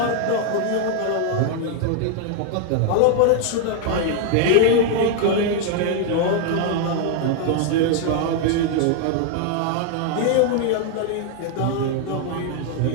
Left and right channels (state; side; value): different; both; correlation 0.00